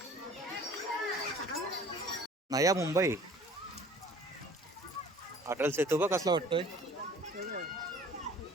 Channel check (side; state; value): both; normal; correlation 0.49